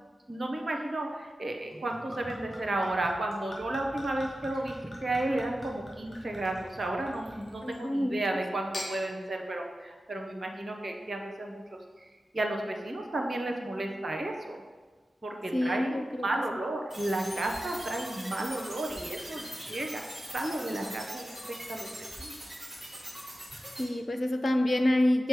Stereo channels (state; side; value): normal; both; correlation 0.93